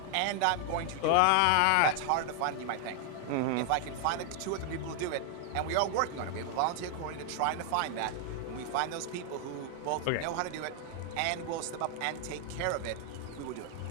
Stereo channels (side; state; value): both; different; correlation 0.00